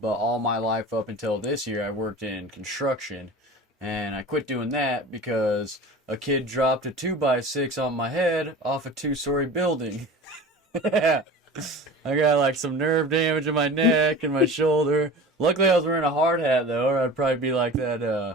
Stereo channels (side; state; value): both; normal; correlation 0.37